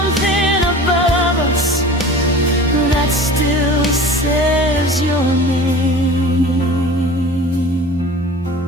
above us that still says your name.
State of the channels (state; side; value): normal; both; correlation 0.40